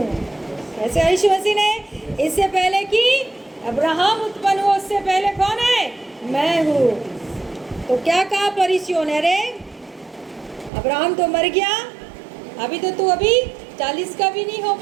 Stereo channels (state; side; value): drops out; left; at 10.7 s